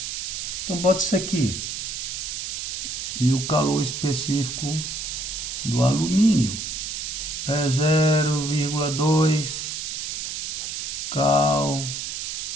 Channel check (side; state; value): right; noise; hiss, 4 dB below the sound